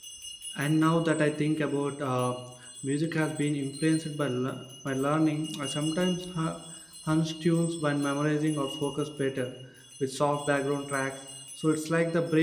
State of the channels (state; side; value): identical; both; correlation 1.00